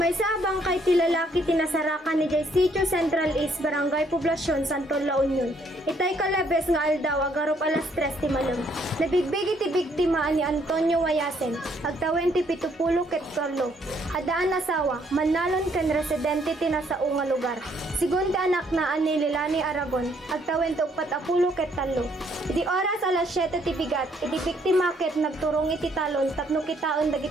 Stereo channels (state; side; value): normal; both; correlation 0.68